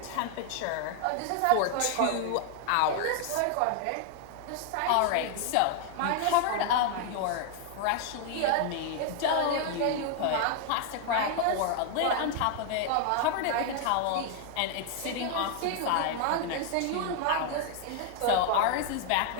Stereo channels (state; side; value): different; both; correlation 0.00